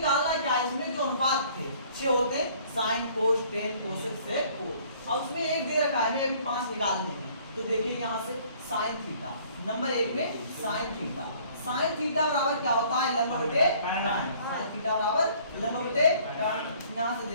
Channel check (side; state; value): both; inverted; correlation -0.57